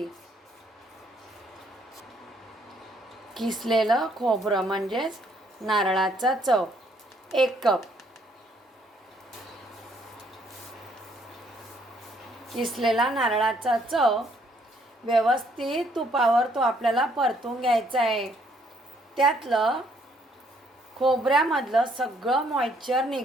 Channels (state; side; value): normal; both; correlation 0.67